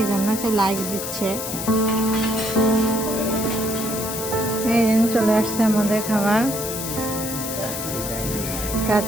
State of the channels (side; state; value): left; noise; hiss, 6 dB below the sound